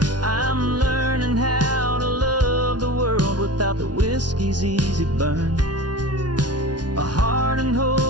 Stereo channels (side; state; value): left; late; 0.69 ms